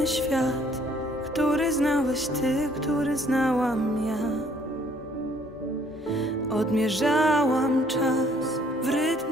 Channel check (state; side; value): normal; both; correlation 0.62